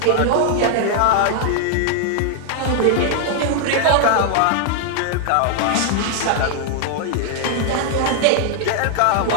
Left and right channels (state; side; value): different; both; correlation 0.00